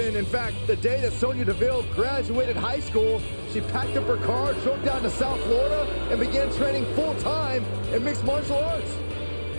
In fact, the day that Sonya Deville graduated high school, she packed up her car, drove down to South Florida, and began training full-time in mixed martial arts.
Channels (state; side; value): inverted; both; correlation -1.00